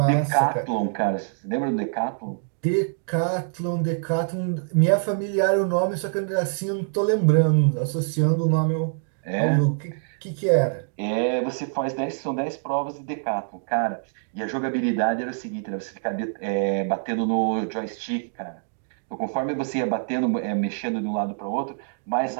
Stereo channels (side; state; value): left; silent; digital silence